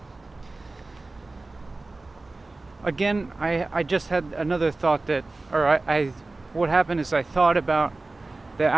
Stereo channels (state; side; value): quieter; left; 3.2 dB